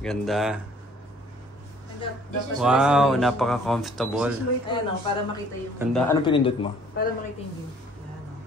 Wow, napaka-comfortable. Ayan para makita yung... Ganda. Anong pinindot mo? Para makita yung view.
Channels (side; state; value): both; normal; correlation 0.57